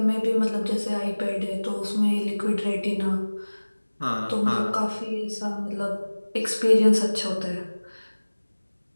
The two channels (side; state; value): both; inverted; correlation -1.00